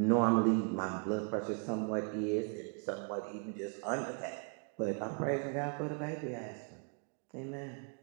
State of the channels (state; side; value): quieter; left; 39.1 dB